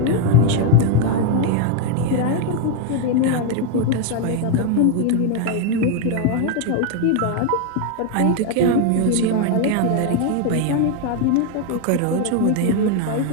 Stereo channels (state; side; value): different; both; correlation 0.01